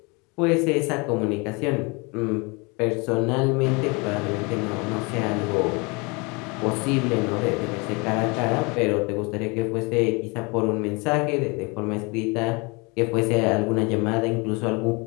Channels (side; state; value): right; quieter; 28.8 dB